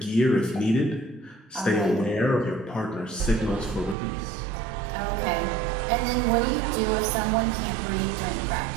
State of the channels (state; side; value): drops out; left; at 4.0 s